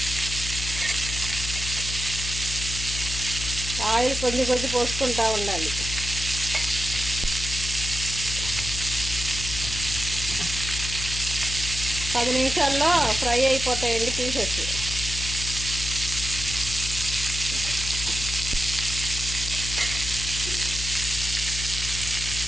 ఆయిల్ కొంచెం పోసుకుంటూ ఉండాలి. పది నిమిషాల్లో ఫ్రై అయిపోతాయండి పీసెస్.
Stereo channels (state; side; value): noise; left; hum, 6 dB below the sound